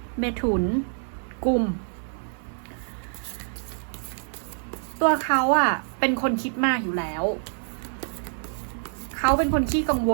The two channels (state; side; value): silent; left; 61 dB below the other